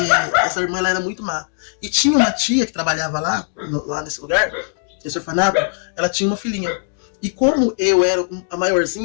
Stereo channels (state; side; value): silent; right; digital silence